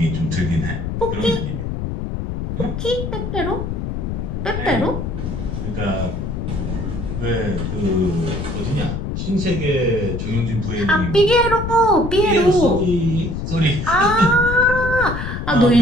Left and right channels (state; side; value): noise; left; rumble, 4 dB below the sound